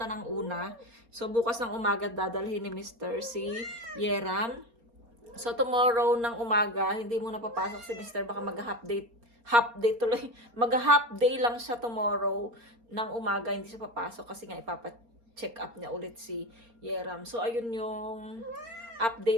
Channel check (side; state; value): left; late; 4.3 ms